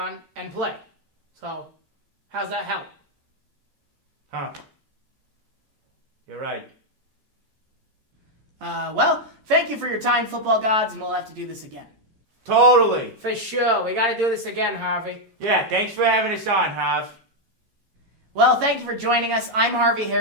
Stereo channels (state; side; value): late; left; 14 ms